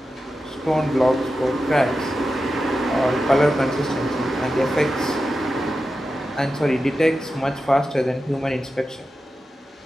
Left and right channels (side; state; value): both; normal; correlation 0.91